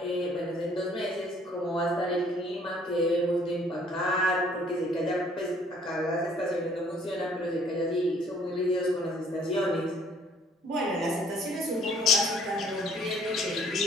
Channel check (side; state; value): both; normal; correlation 0.60